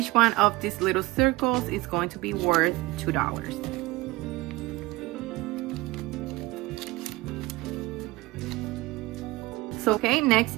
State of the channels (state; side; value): quieter; left; 20.6 dB